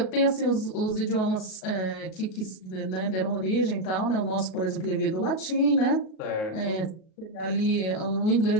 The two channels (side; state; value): right; late; 37 ms